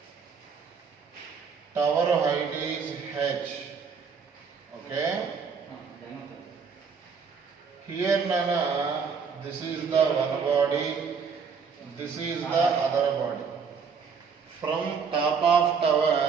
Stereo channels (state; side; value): quieter; left; 5.8 dB